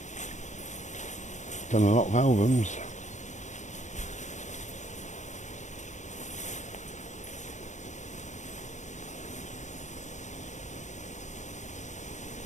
Done a lot of albums.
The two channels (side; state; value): right; late; 0.35 ms